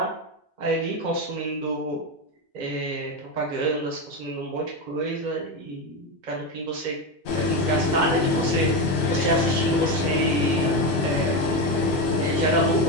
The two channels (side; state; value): both; normal; correlation 0.14